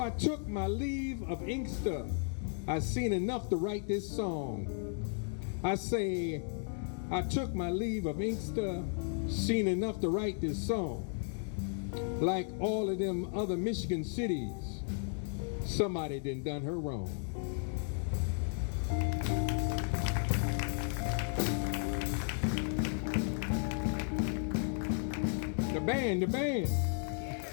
took my leave of Inkster. I seen enough to write this song. I say, I took my leave of Inkster, seen enough to write this song. Like all of them other Michigan cities, somebody done her wrong. The band.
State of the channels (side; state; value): right; silent; 55 dB below the other